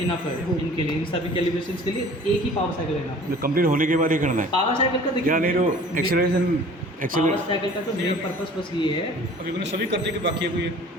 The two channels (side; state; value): both; normal; correlation 0.47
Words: इनफ है इनके लिए, इन सभी कैलिब्रेशंस के लिए एक ही पावर साइकिल इनफ है। कंप्लीट होने के बाद ही करना है पावर साइकिल का देखिए, क्या नहीं तो एक्सेलरेशन पावर साइकिल का तो मेन पर्पस बस ये है। अभी मैंने सभी कर दिए कि बाकी है कोई?